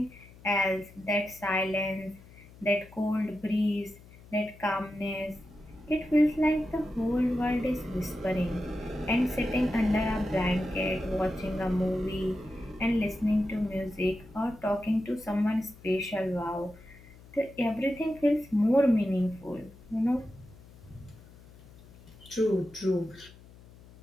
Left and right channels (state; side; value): noise; left; hum, 22 dB below the sound